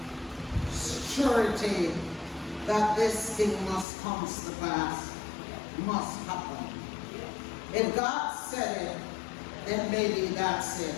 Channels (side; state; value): right; drops out; at 3.9 s